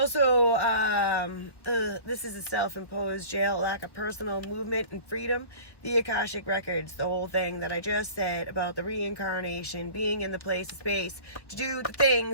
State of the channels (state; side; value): late; right; 1.4 ms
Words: this is a self-imposed jail, lack of personal movement and freedom. The Akashic Records, the whole thing that I just said about the reincarnation, being in the place of space to do the